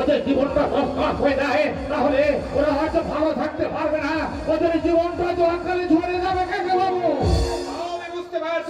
জীবনটা নষ্ট হয়ে যায়, তাহলে ওরা হয়তো ভালো থাকতে পারবে না, ওদের জীবনটা তো আকালে ঝরে যাবে কাকা বাবু। আমি বুঝতে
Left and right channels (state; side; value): identical; both; correlation 1.00